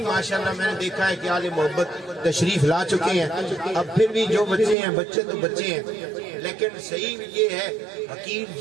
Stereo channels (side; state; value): left; drops out; at 4.8 s